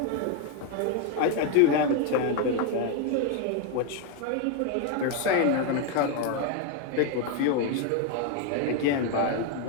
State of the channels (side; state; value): both; different; correlation 0.01